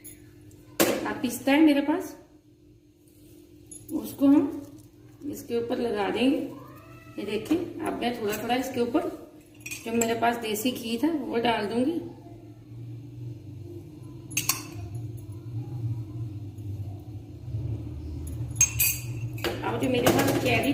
अब पिस्ता है मेरे पास, उसको हम इसके ऊपर लगा देंगे। ये देखें, अब मैं थोड़ा थोड़ा इसके ऊपर जो मेरे पास देसी घी था वो डाल दूंगी। अब जो मेरे पास चेरी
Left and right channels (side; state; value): both; identical; correlation 1.00